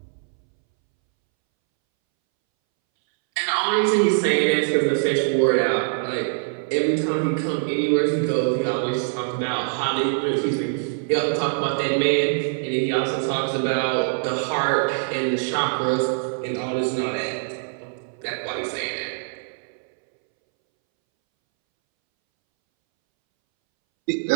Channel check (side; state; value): left; silent; 63 dB below the other